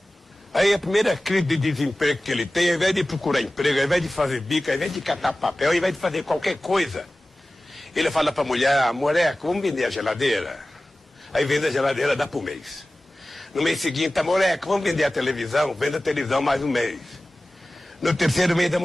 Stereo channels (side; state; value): both; normal; correlation 0.97